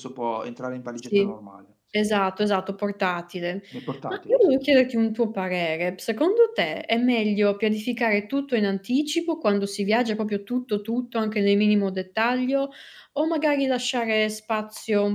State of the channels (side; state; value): both; identical; correlation 1.00